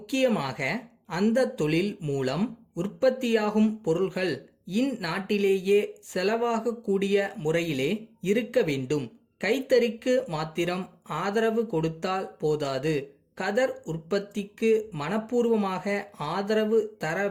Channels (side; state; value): both; identical; correlation 1.00